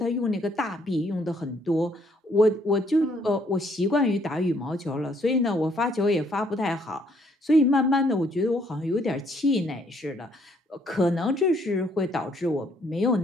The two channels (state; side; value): normal; both; correlation 0.67